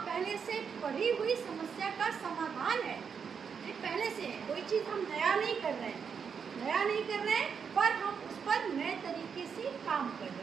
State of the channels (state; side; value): quieter; left; 6.5 dB